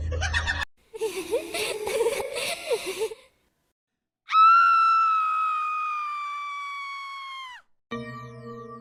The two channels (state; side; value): identical; both; correlation 1.00